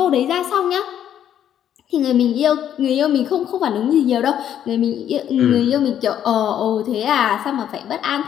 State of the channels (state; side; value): quieter; right; 10.1 dB